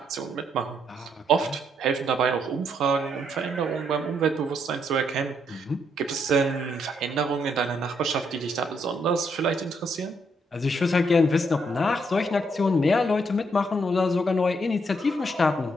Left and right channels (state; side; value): normal; both; correlation 0.74